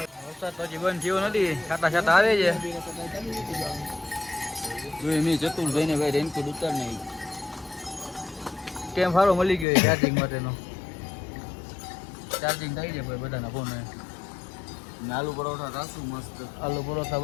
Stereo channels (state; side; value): drops out; right; at 9.7 s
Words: વરસાદ તો હજી બંધ થયો નથી, છાતા છાતા આવે છે. જોઈએ મેં ચતુરભાઈ ને ભાઈ રેનકોટ ઉતાર નહીં. કેમ સારો મળી ગયો ચાર્જિંગ માટેનો. ચાર્જિંગ થઈ જાય ભાઈ બધાના ફોન. આલુ પરોઠા રાખશું મસ્ત. આલુ પરોઠા